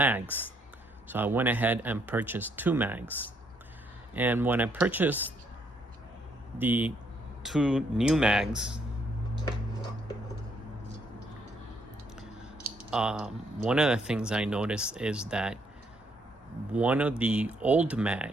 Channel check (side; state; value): both; normal; correlation 0.71